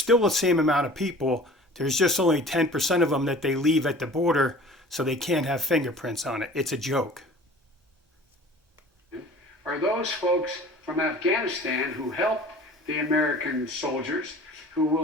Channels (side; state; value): both; normal; correlation 0.44